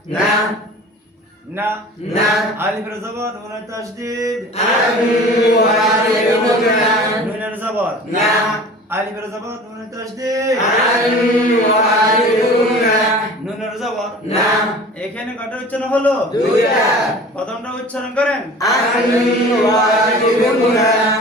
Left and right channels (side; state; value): both; normal; correlation 0.42